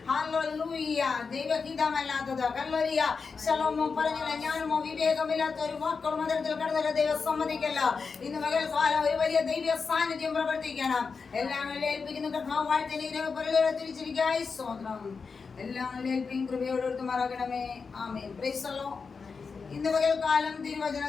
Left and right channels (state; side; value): quieter; right; 5.1 dB